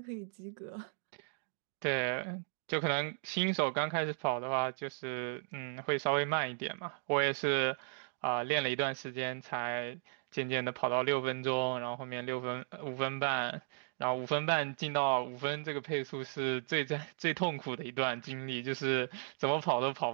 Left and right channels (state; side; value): silent; left; digital silence